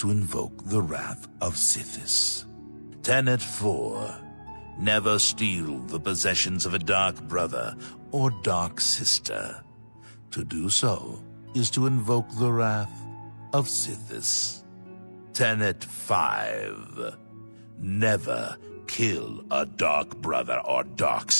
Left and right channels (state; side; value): inverted; both; correlation -1.00